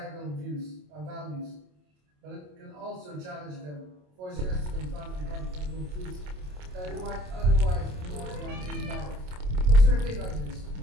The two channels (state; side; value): late; left; 27 ms